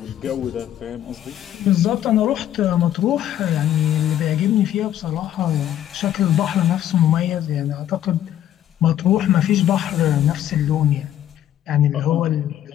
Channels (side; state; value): right; quieter; 11.4 dB